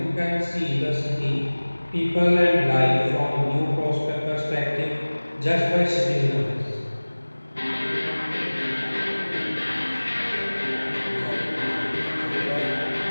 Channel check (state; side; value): inverted; both; correlation -1.00